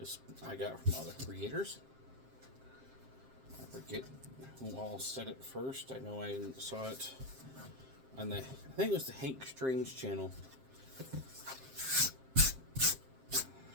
I got from other creators. I forget who all said it first. I know I saw it on I think it was the Hank Strange channel. I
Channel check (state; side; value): late; left; 7.6 ms